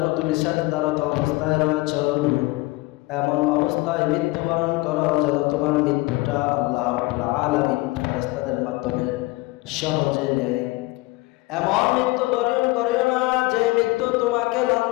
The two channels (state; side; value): quieter; right; 21.8 dB